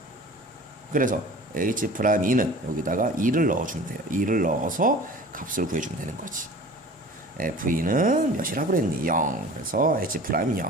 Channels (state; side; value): normal; both; correlation 0.42